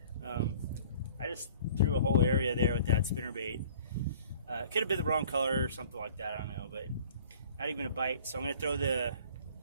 I just threw a whole area there with that spinnerbait. It could have been the wrong color or something like that, I don't know, but not even a bite. So I'm going to throw the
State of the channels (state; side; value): inverted; both; correlation -0.50